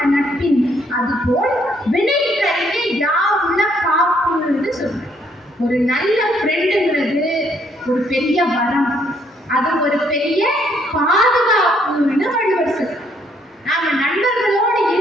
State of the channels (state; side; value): normal; both; correlation 0.68